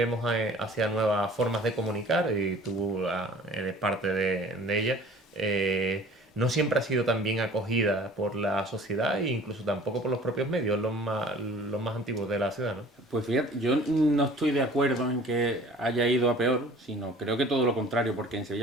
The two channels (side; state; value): both; normal; correlation 0.48